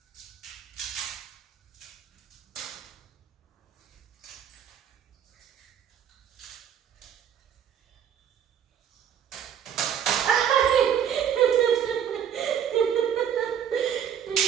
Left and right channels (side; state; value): left; quieter; 9.0 dB